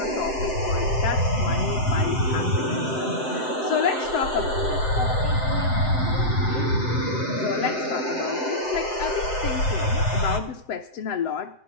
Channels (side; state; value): right; late; 7.8 ms